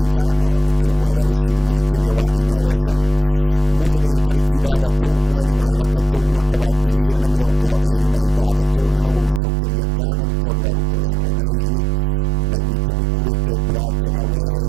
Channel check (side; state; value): left; drops out; at 9.4 s